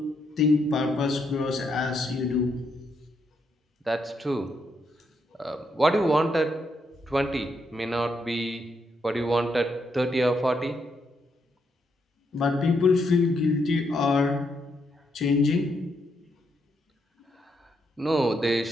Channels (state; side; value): normal; both; correlation 0.78